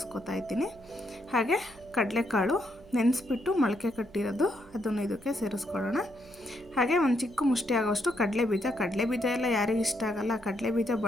ಇದ್ದೀನಿ. ಹಾಗೆ ಕಡಲೆಕಾಳು ನೆನೆಸ್ಬಿಟ್ಟು ಮೊಳಕೆ ಕಟ್ಟಿರೋದು ಅದನ್ನು ಇದಕ್ಕೆ ಸೇರಿಸ್ಕೊಳ್ಳೋಣ. ಹಾಗೆ ಒಂದು ಚಿಕ್ಕ ಮುಷ್ಟಿ ಆಗೋಷ್ಟು ಕಡಲೆಬೀಜ ಎಲ್ಲ ಯಾರಿಗೆ ಇಷ್ಟ ಆಗಲ್ಲ. ಕಡಲೆಬೀಜ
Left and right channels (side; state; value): right; noise; hum, 23 dB below the sound